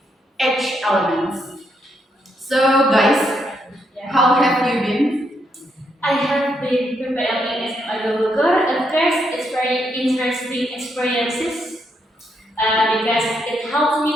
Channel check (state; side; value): normal; both; correlation 0.78